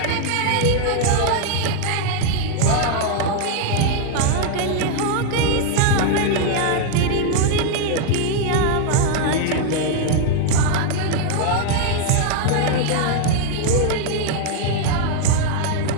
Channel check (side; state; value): both; different; correlation 0.00